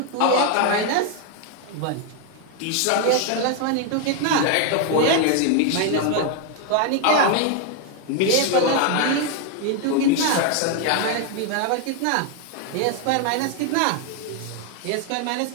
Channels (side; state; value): both; different; correlation 0.00